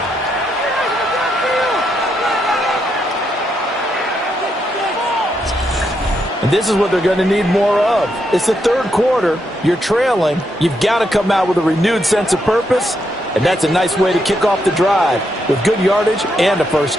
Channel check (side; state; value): both; normal; correlation 0.80